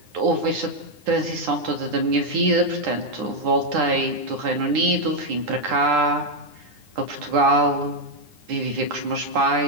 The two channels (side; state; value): left; late; 9.8 ms